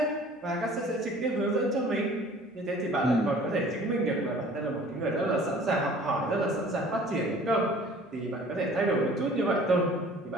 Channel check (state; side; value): normal; both; correlation 0.49